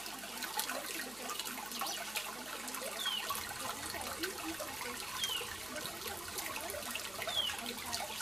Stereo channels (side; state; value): right; noise; hum, 20 dB below the sound